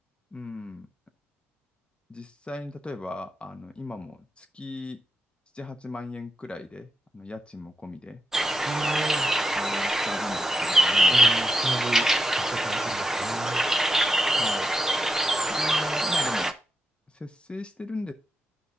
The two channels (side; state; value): both; normal; correlation 0.83